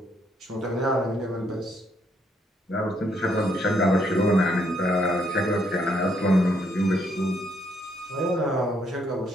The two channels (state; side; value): normal; both; correlation 0.72